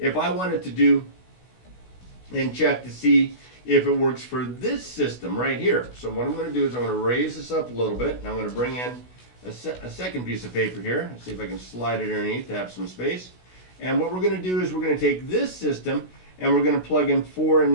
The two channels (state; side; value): late; right; 16 ms